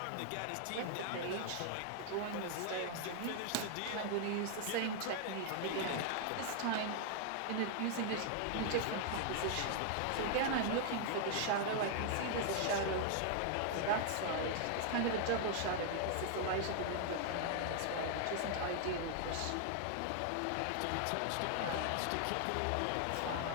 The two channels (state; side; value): different; both; correlation 0.00